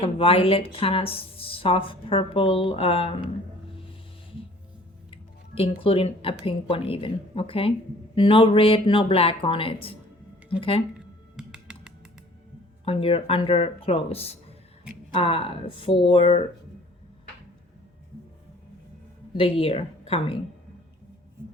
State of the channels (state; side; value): normal; both; correlation 0.51